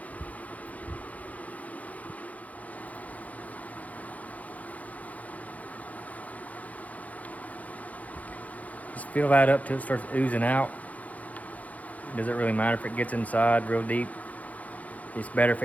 Just fill that up till it starts oozing out. It doesn't really matter if it gets inside real deep. It's better if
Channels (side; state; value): right; late; 0.073 ms